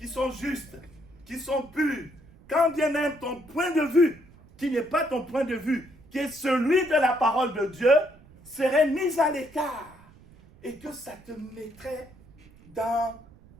sont justes, qui sont pures, quand bien même ton point de vue, qui n'est pas ton point de vue, qui est celui de la parole de Dieu, serait mis à l'écart et que ça te mettrait dans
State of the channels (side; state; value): right; noise; rumble, 24 dB below the sound